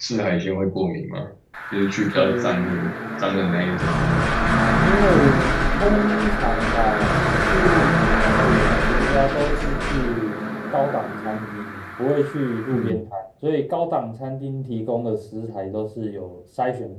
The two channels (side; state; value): both; identical; correlation 1.00